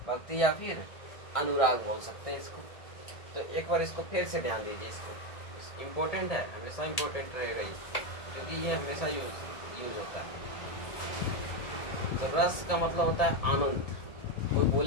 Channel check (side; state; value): right; late; 1.8 ms